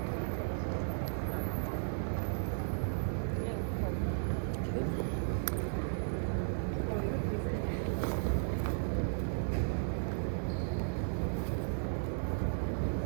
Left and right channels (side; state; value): left; silent; digital silence